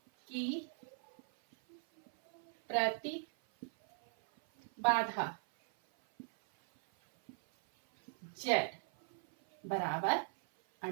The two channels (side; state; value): left; silent; 52 dB below the other